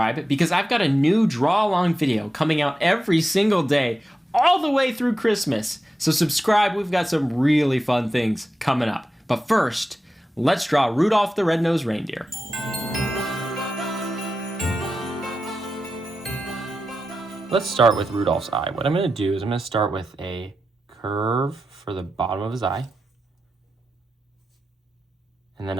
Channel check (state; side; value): normal; both; correlation 0.91